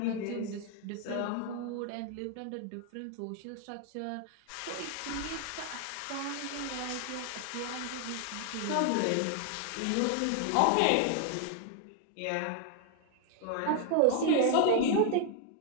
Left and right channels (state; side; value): different; both; correlation 0.00